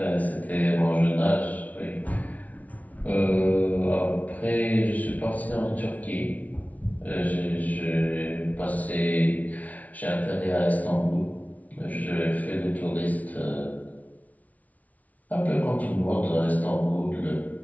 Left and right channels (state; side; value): late; right; 0.072 ms